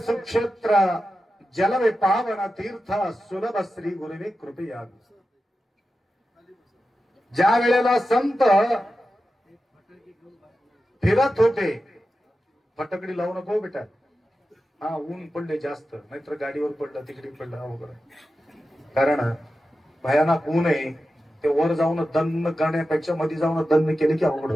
जलवे पावन तीर्थ सुलभ श्री गुरुवे कृपया. ज्या वेळेला संत फिरत होते, फटकडी लावू नको बेटा, हा ऊन पडले जास्त, नाहीतर गाडीवर पडलं तिकडे पडलं अवघड. कारण भयानक ऊन आहे, ते वर जाऊन दन्न करण्यापेक्षा मध्ये जाऊन दन्न केले की अवघड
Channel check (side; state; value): both; normal; correlation 0.92